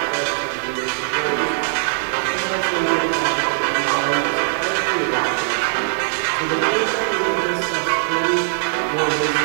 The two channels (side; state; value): left; silent; digital silence